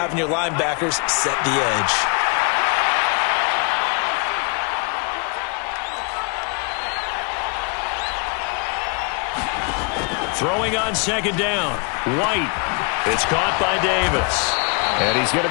your linebackers set the edge. Throwing on 2nd down. White. It's caught by Davis. And he's going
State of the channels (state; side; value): quieter; right; 34.8 dB